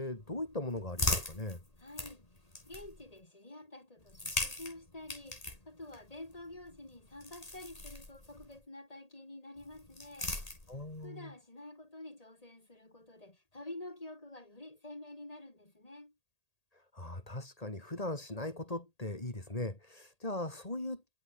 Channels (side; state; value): right; late; 1.8 ms